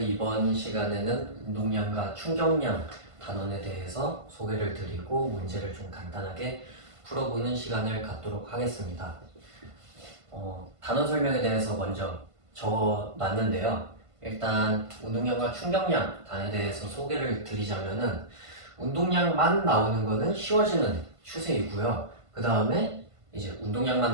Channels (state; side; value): late; left; 1.5 ms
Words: 시간에는 운동량과 충격량 단원에 대해서 소개를 드리고 문제를 좀 간단하게 풀어보는 시간을 갖도록 하겠습니다. 단원 설명에 대해서 먼저 적어놨는데요. 일단 운동량과 충격량 단원에 대해서 소개를 드리자면은 운동량만 나오는 거는 쉬워지는 추세이고요. 그 다음에 이제